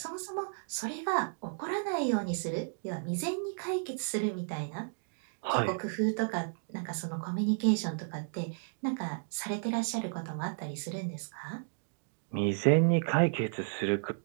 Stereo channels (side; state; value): left; silent; digital silence